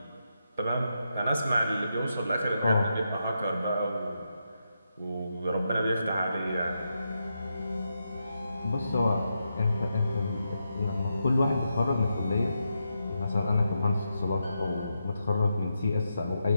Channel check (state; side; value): inverted; both; correlation -0.85